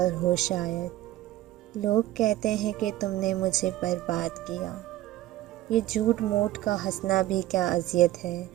ہو شاید، لوگ کہتے ہیں کہ تم نے مجھے برباد کیا، یہ جھوٹ موٹ کا ہنسنا بھی کیا اذیت ہے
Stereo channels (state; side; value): quieter; left; 15.2 dB